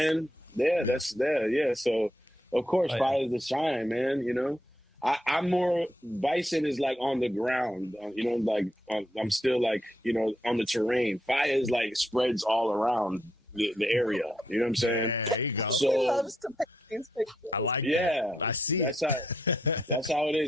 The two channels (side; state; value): both; normal; correlation 0.79